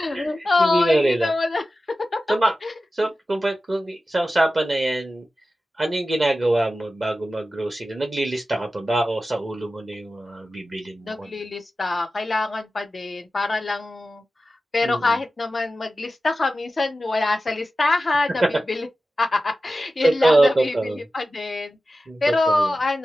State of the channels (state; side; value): normal; both; correlation 0.94